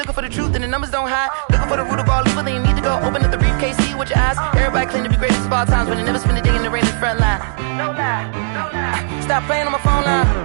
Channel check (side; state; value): left; silent; digital silence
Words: for the truth and the numbers don't hide. Looking for the root of all evil, then you need to go open up the briefcase, see with your eyes. Everybody claim to be greatest of all times, but they never spend a day in the rain in the front line. No lie. Stop playing on my phone line.